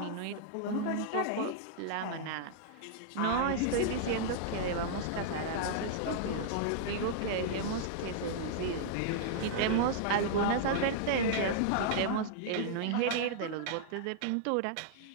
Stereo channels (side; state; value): both; different; correlation -0.01